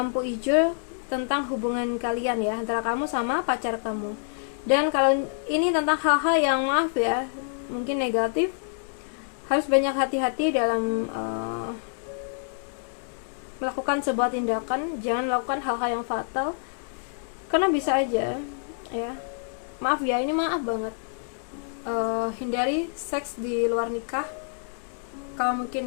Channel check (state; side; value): silent; right; digital silence